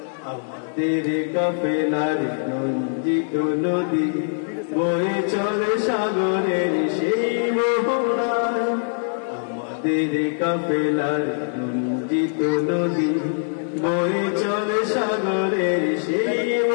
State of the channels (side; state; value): right; silent; 64 dB below the other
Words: আমাদের কাফেলার রঞ্জিত নদী বয়ে চলে সাগরের সেই মোহনায়। আমাদের কাফেলার রঞ্জিত নদী বয়ে চলে সাগরের সেই